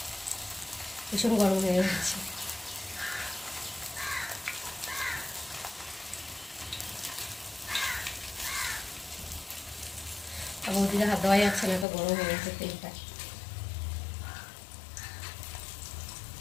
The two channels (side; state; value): right; drops out; at 11.9 s